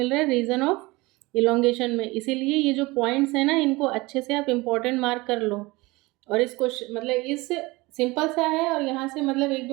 रहा है, रीजन ऑफ इलोंगेशन में। इसीलिए ये जो पॉइंट्स हैं ना इनको अच्छे से आप इम्पोर्टेंट मार्क कर लो। और इस क्वेश्चन मतलब इस सिंपल सा है, और यहाँ से मतलब एक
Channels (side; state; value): left; quieter; 22.4 dB